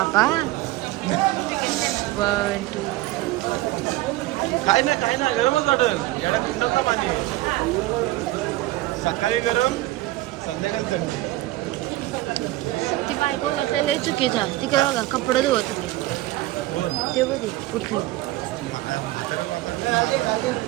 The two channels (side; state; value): left; quieter; 17.5 dB